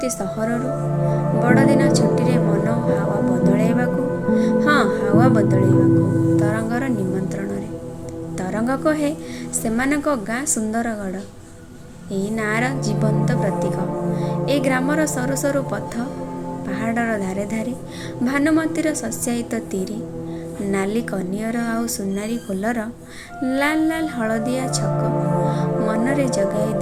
ସହରରୁ ବଡ଼ଦିନ ଛୁଟିରେ ମନ ହାୱା ବଦଳାଇବାକୁ। ହଁ, ହାୱା ବଦଳାଇବାକୁ ତରଙ୍ଗର ନିମନ୍ତ୍ରଣରେ। ତରଙ୍ଗ କହେ ସେମାନଙ୍କ ଗାଁ ସୁନ୍ଦରଗଡ଼ ଏଇ ନାଁର ଜୀବନ୍ତ ପ୍ରତୀକ। ଏ ଗ୍ରାମର ସରୁ ସରୁ ପଥ, ପାହାଡ଼ର ଧାରେ ଧାରେ ଭାନୁମତୀର ଶସ୍ୟାୟିତ ତିରି, ନାଲି କନିଅର ଆଉ ସୁନାରୀ ଫୁଲର ଲାଲ ଲାଲ ହଳଦିଆ ଛକ ମନରେ ଜଗାଇ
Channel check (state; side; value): identical; both; correlation 1.00